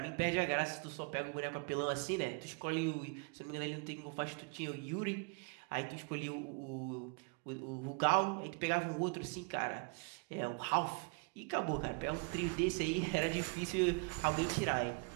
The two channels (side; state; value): left; quieter; 32.5 dB